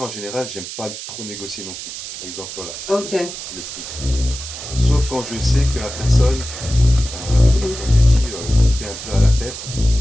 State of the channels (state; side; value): noise; right; hiss, 9 dB below the sound